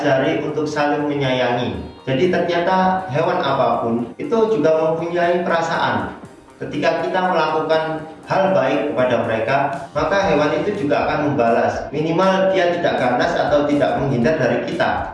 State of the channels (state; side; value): identical; both; correlation 1.00